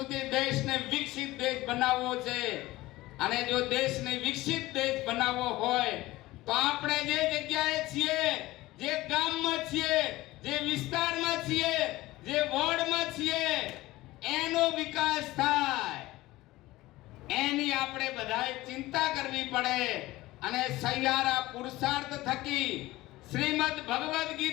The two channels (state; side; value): quieter; right; 18.3 dB